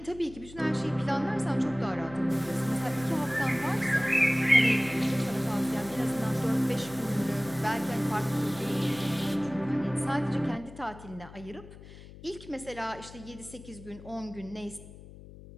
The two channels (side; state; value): left; noise; hum, 17 dB below the sound